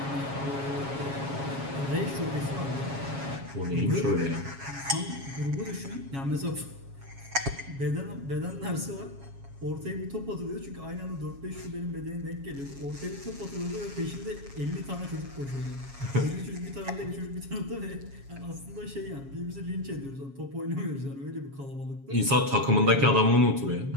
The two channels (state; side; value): late; left; 7.3 ms